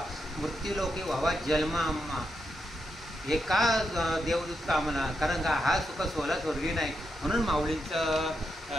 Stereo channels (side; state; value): both; normal; correlation 0.84